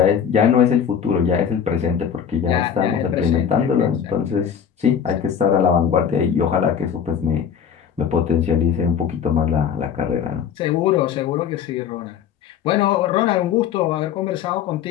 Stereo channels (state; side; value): quieter; right; 8.0 dB